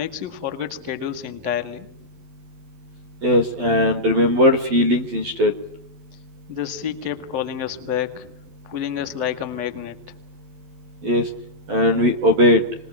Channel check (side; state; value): left; late; 12 ms